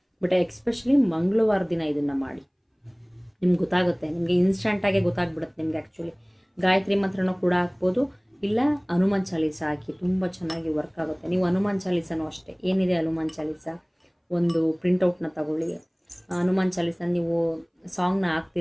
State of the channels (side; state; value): both; identical; correlation 1.00